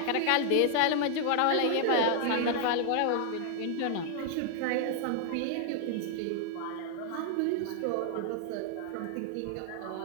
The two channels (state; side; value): different; both; correlation 0.00